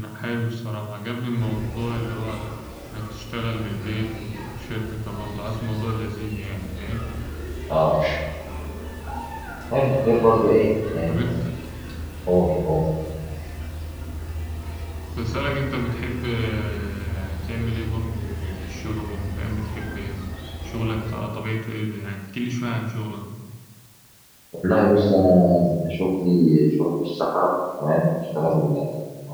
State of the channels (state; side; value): identical; both; correlation 1.00